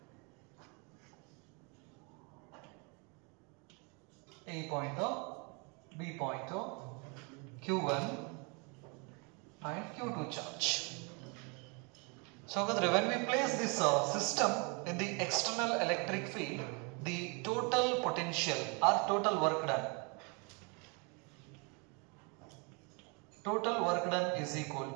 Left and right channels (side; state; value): left; quieter; 32.5 dB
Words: A point, B point, Q1 and Q2 charge. So when we place this system in the external electric field, the total potential or total work done is equal